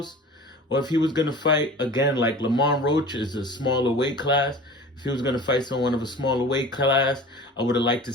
Or if he was going to fight, again, like Lamont Roach is a smaller weight class. If he was going to fight someone of a smaller weight class, I would have liked to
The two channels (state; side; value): normal; both; correlation 0.39